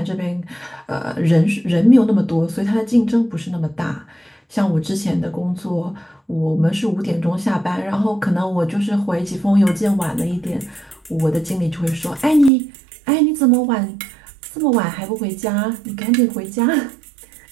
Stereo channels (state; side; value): drops out; left; at 12.5 s